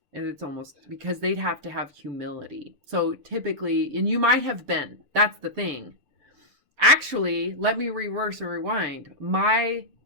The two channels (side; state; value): left; late; 6.9 ms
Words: And it's almost because they'd have to have humility. So typically, and you might have been, that's the thing. Actually, let me reverse or rewind.